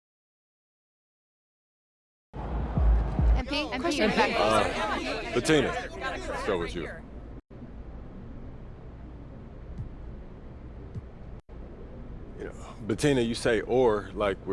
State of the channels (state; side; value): identical; both; correlation 1.00